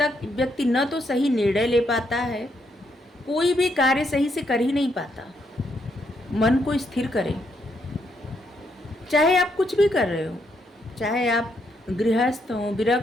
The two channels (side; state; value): both; normal; correlation 0.76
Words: व्यक्ति न तो सही निर्णय ले पाता है, कोई भी कार्य सही से कर ही नहीं पाता। मन को स्थिर करें, चाहे आप कुछ भी कर रहे हो, चाहे आप गृहस्थ हो,